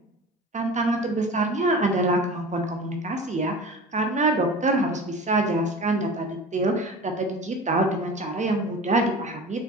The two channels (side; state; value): both; normal; correlation 0.36